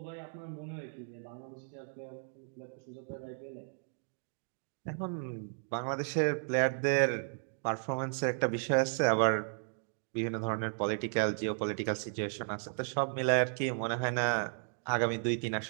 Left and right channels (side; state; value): left; silent; digital silence